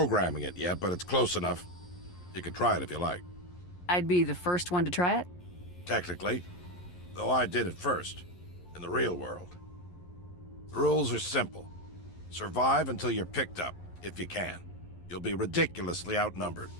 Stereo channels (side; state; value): right; late; 11 ms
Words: it yet, but it's close enough. You can try it if you like. I'd be the first one to try it? Technically. Though I did it first. In the real world. The rules are simple. Survive until you're picked up, if you can. You'll be ridiculously outnumbered.